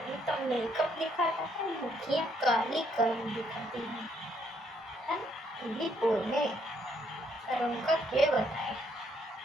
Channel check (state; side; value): normal; both; correlation 0.71